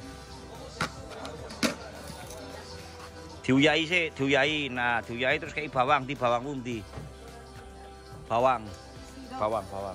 Diuyai sih, diuyai. Nah, diuyai terus kei bawang, di bawang pundi. Bawang.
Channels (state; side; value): identical; both; correlation 1.00